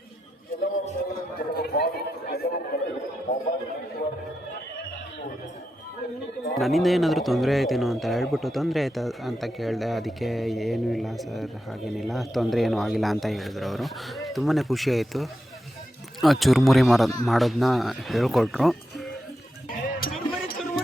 ನನ್ನಿಂದ ಏನಾದರೂ ತೊಂದರೆ ಆಯ್ತೇನೋ ಅಂತ ಹೇಳ್ಬಿಟ್ಟು, ತೊಂದರೆ ಆಯ್ತಾ ಅಂತ ಕೇಳಿದೆ. ಅದಕ್ಕೆ ಏನೂ ಇಲ್ಲ ಸರ್, ಹಾಗೇನಿಲ್ಲ, ತೊಂದರೆ ಏನೂ ಆಗಿಲ್ಲ ಅಂತ ಹೇಳಿದ್ರು ಅವರು. ತುಂಬಾ ಖುಷಿ ಆಯಿತು. ಚುರುಮುರಿ ಮಾಡೋದನ್ನ ಹೇಳ್ಕೊಟ್ರು.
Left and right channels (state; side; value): normal; both; correlation 0.87